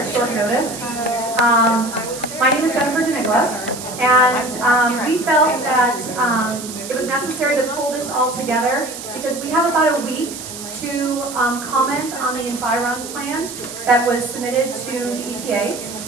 short notice. My name is deNicola, and we felt that it was necessary to pull this all together because we have about a week to comment on the environment plan that was submitted to the EPA,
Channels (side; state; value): right; noise; hiss, 11 dB below the sound